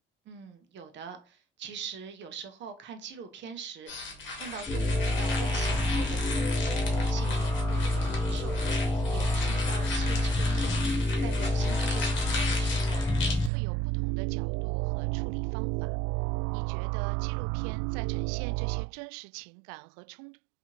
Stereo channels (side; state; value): left; drops out; at 13.5 s